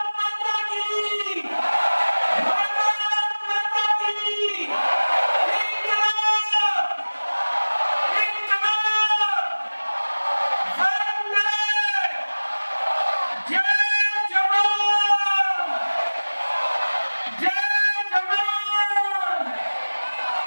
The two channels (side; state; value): both; inverted; correlation -1.00